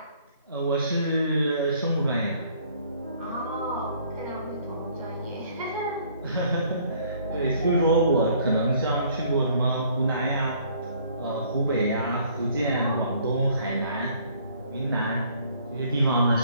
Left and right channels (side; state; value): both; inverted; correlation -0.60